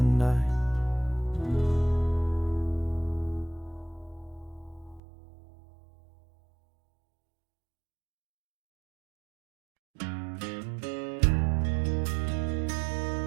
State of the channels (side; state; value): left; drops out; at 5.0 s